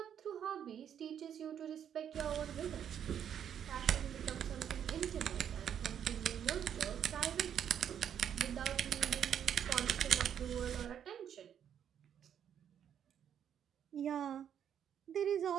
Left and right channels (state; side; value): quieter; left; 9.0 dB